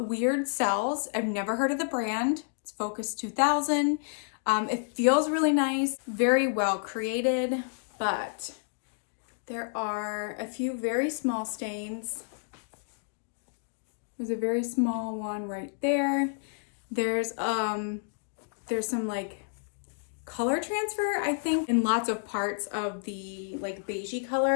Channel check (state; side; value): silent; right; digital silence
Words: weird sells. I've never heard of the brand. It's Focus 2000. It feels really nice, very well created, but there are a few very small stains. There's a very small one right there. There's some like color transfer, I think, in lots of parts of the like beigey